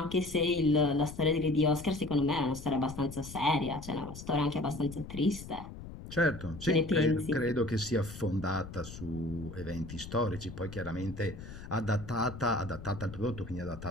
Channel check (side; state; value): left; noise; rumble, 12 dB below the sound